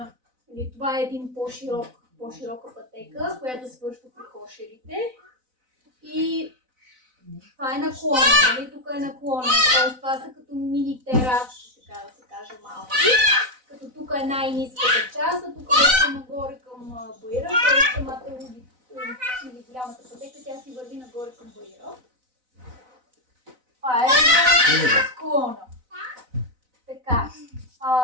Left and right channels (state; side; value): late; left; 4.0 ms